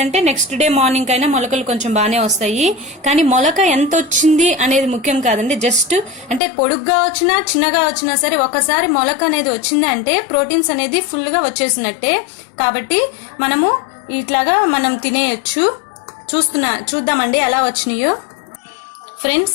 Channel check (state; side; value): drops out; right; at 6.4 s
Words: నెక్స్ట్ డే మార్నింగ్ అయినా మొలకలు కొంచెం బాగానే వస్తాయి. కానీ మొలక ఎంత వచ్చింది అనేది ముఖ్యం కాదండి. జస్ట్ అంటే పొడుగ్గా వచ్చినా చిన్నగా వచ్చినా సరే ఒకసారి మొలక అనేది వచ్చింది అంటే ప్రోటీన్స్ అనేది ఫుల్ గా వచ్చేసినట్టే. కాబట్టి మనము ఇట్లాగా మనం తినేయచ్చు. చూద్దామండి ఎలా వచ్చినాయో.